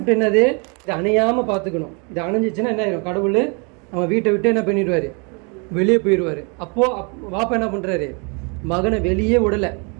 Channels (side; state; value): left; quieter; 33.8 dB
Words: என்னது? இதை அணையாமல் பார்த்துக்கணும். இது அணைஞ்சிச்சுன்னா என்ன ஆயிடும்? கடவுள் அவன் வீட்டை விட்டு என்ன பண்ணிடுவார்? வெளியே போயிடுவார். அப்போது வாப்பா என்ன பண்ணுறாரு? மகனை வெளியே விடலை.